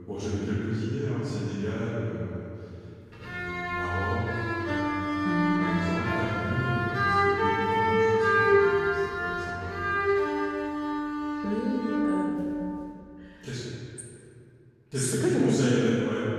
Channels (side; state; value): both; identical; correlation 1.00